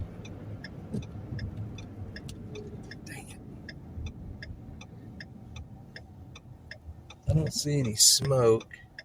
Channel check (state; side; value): identical; both; correlation 1.00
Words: Dang it. I don't see any smoke